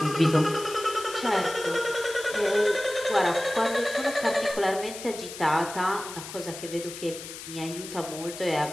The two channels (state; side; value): noise; left; hiss, 11 dB below the sound